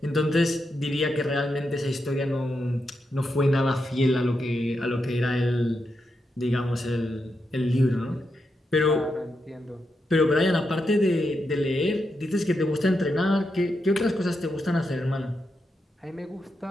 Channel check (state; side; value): normal; both; correlation 0.85